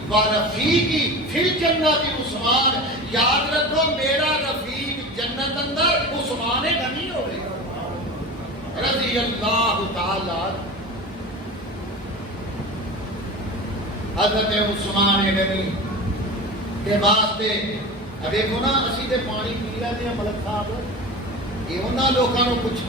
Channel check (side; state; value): both; normal; correlation 0.31